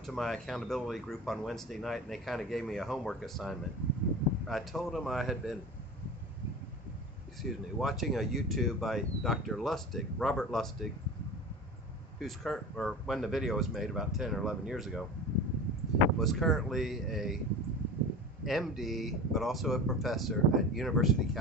to my accountability group on Wednesday night, and they kind of gave me a homework assignment. I told them I had been, watching a YouTube by Dr. Lustig, Robert Lustig, who's current, or when the video was made about 10 or 11 years ago, was currently a MD, but also a professor at University of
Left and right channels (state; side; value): normal; both; correlation 0.33